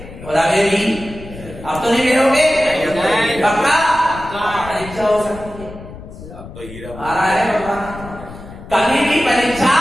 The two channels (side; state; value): left; noise; rumble, 15 dB below the sound